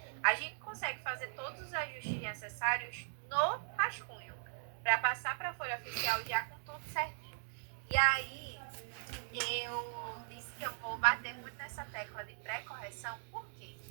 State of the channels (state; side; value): silent; left; digital silence